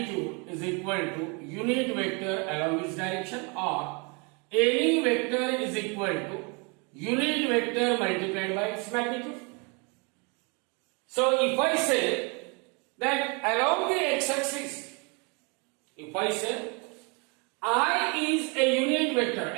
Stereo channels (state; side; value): quieter; left; 32.2 dB